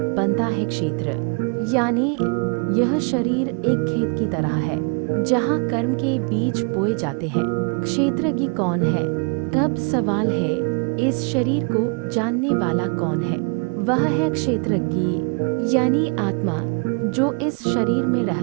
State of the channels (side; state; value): left; quieter; 35.2 dB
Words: बनता है क्षेत्र। यानी यह शरीर एक खेत की तरह है जहाँ कर्म के बीज बोए जाते हैं। क्षेत्रज्ञ कौन है? तब सवाल है, इस शरीर को जानने वाला कौन है? वह है क्षेत्रज्ञ यानी आत्मा, जो इस शरीर में